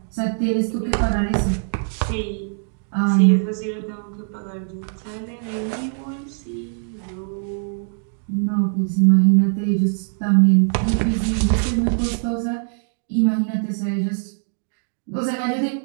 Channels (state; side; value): silent; left; digital silence